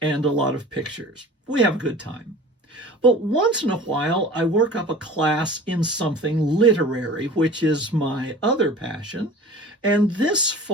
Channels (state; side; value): normal; both; correlation 0.41